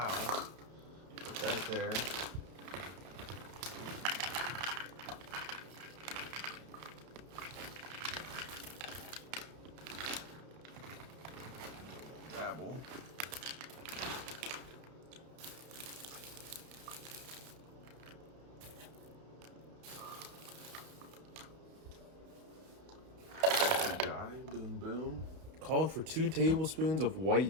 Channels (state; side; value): late; left; 31 ms